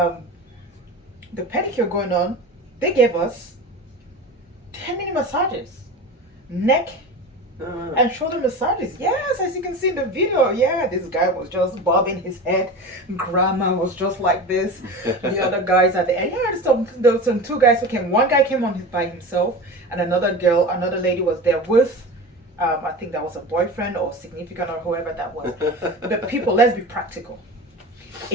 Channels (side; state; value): both; normal; correlation 0.30